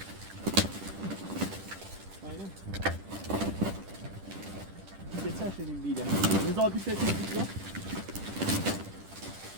aynen. Geçen şeyin bile. Ne zaman bir şey yapıyorsun lan?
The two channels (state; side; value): late; left; 10 ms